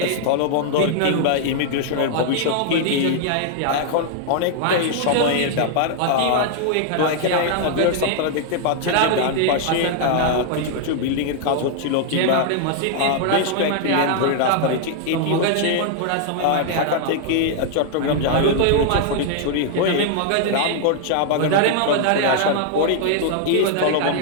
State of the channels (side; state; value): both; different; correlation 0.00